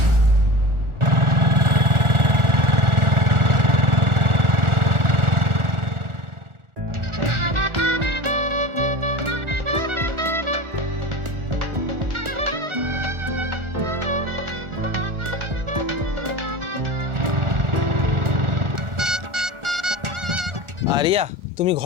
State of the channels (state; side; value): late; left; 1.4 ms